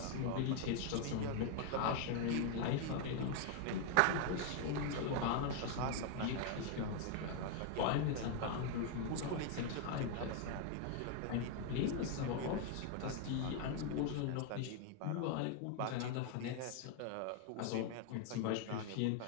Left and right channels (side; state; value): both; different; correlation 0.00